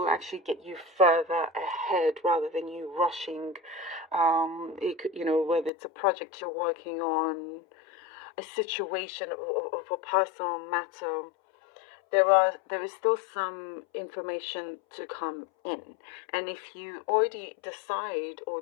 actually get you further ahead rather than you rushing. It could, whether it's a project you're working on, a situation of a personal matter, there is still some information to come in. And if you already decide or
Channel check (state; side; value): drops out; right; at 5.7 s